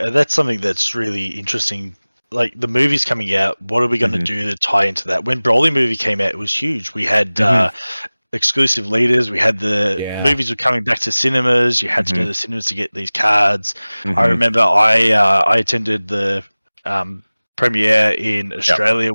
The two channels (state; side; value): inverted; both; correlation -1.00